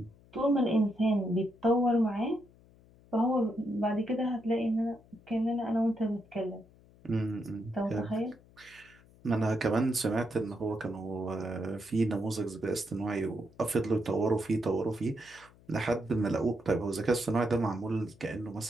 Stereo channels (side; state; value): left; noise; hum, 26 dB below the sound